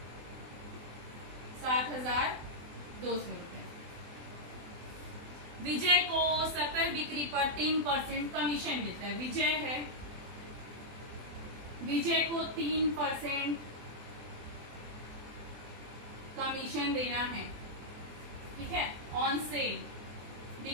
7,200 रुपए। विजय को सकल बिक्री पर 3% कमीशन मिलता है। विजय है, विजय को 3% कमीशन देना है। ठीक है, ऑन सेल,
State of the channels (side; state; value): left; late; 24 ms